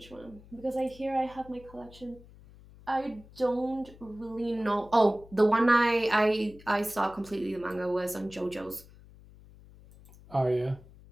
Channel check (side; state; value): left; noise; hum, 22 dB below the sound